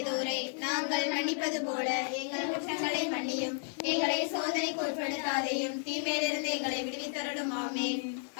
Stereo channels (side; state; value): right; silent; 56 dB below the other